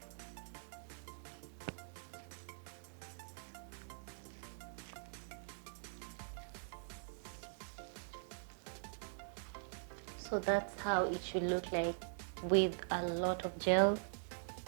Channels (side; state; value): left; silent; digital silence